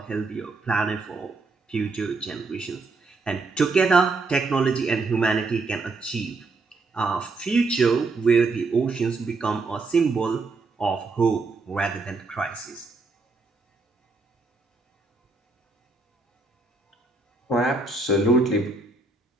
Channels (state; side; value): quieter; left; 3.7 dB